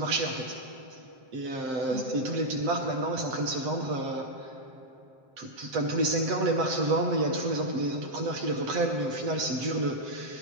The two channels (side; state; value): left; late; 7.7 ms